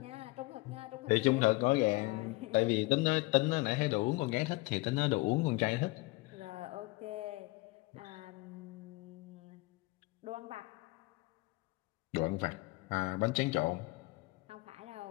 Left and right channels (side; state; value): right; quieter; 22.6 dB